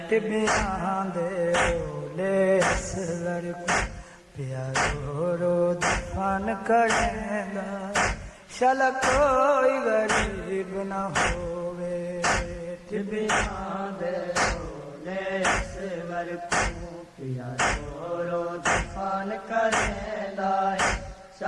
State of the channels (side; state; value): both; identical; correlation 1.00